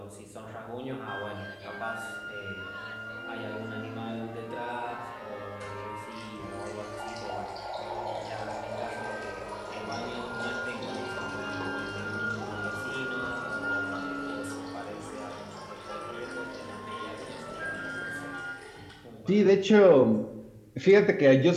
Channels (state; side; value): identical; both; correlation 1.00